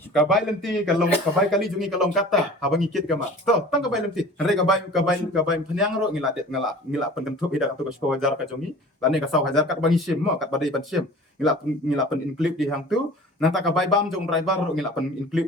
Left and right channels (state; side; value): normal; both; correlation 0.42